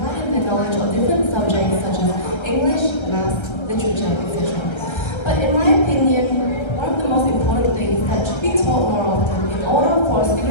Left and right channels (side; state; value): right; late; 1.3 ms